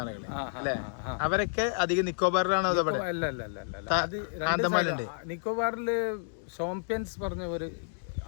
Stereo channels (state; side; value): silent; right; digital silence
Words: ആളുകൾ അല്ലെ, അവരൊക്കെ അധികം നിക്കോബാറിലാണോ? ആന്തമാനുണ്ട്. നിക്കോബാറില് ഷോംപ്യൻസ് പറഞ്ഞ ഒരു